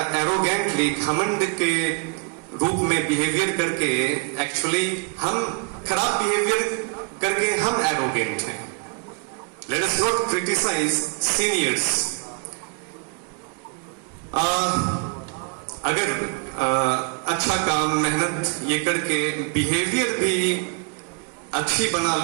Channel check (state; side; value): quieter; left; 35.4 dB